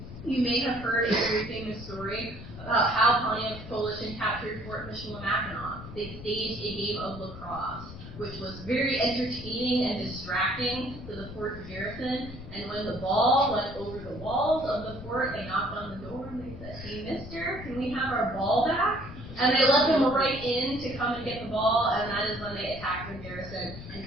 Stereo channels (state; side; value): noise; left; rumble, 12 dB below the sound